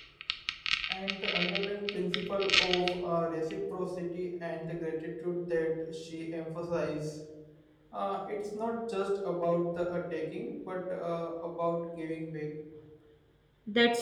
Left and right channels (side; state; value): both; identical; correlation 1.00